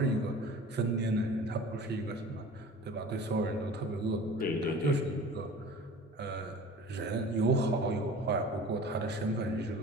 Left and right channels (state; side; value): normal; both; correlation 0.41